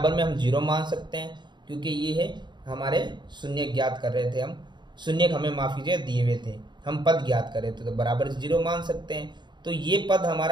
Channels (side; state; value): left; late; 0.22 ms